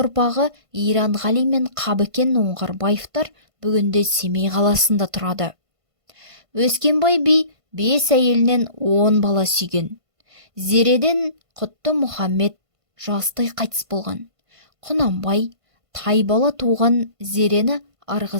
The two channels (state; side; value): late; left; 1.5 ms